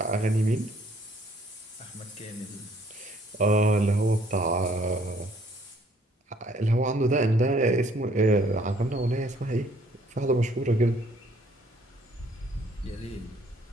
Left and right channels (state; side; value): normal; both; correlation 0.62